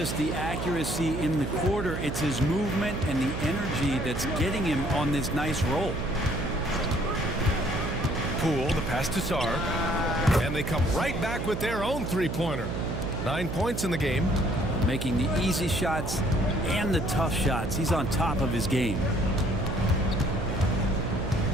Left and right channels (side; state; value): right; noise; hum, 4 dB below the sound